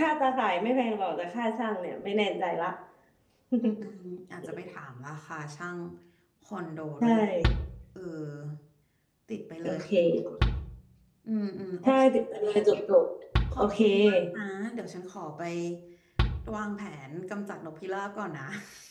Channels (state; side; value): identical; both; correlation 1.00